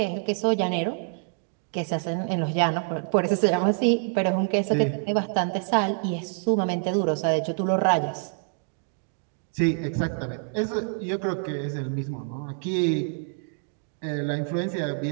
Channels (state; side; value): silent; left; digital silence